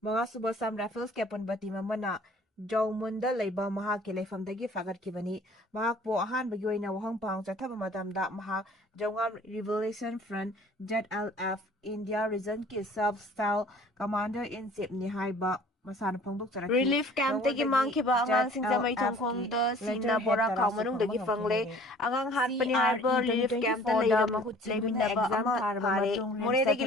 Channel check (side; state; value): both; normal; correlation 0.51